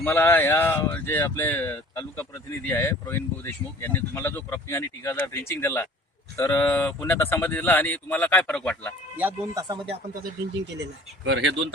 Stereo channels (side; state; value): both; normal; correlation 0.48